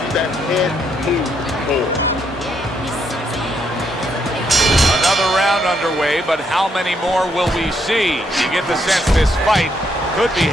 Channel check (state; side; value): normal; both; correlation 0.75